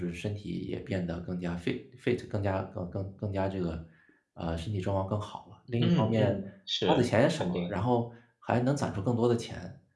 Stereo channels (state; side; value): identical; both; correlation 1.00